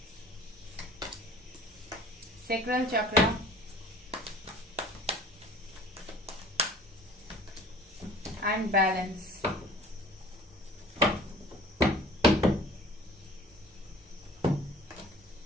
सैक्रल चक्र, एंड बैलेंस।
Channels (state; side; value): normal; both; correlation 0.48